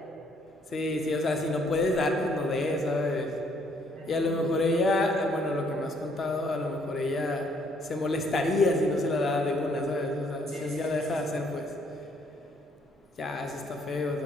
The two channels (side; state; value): both; normal; correlation 0.67